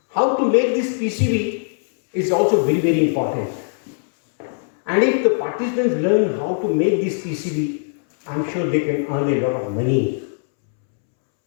How to make this PCB is also very, very important. And if the participants learn how to make this PCB, I am sure they can earn a lot of money.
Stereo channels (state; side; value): silent; right; 66 dB below the other